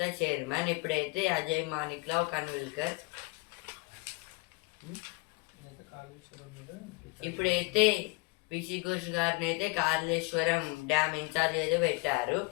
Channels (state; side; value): quieter; right; 27.3 dB